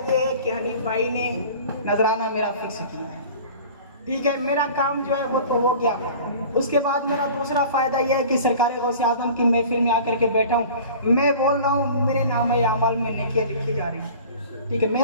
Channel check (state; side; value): inverted; both; correlation -0.42